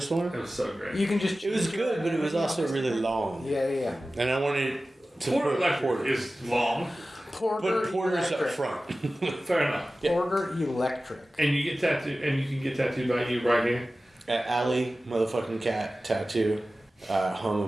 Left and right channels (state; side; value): normal; both; correlation 0.96